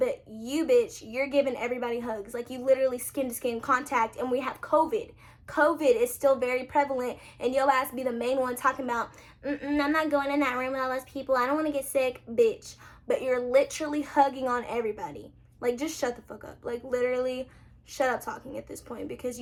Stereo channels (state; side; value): identical; both; correlation 1.00